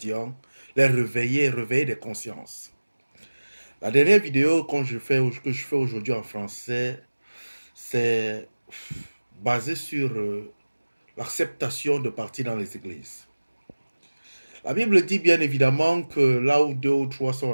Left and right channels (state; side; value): inverted; both; correlation -1.00